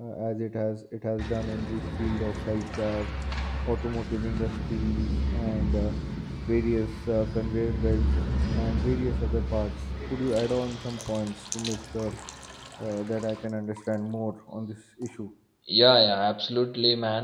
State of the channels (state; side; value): identical; both; correlation 1.00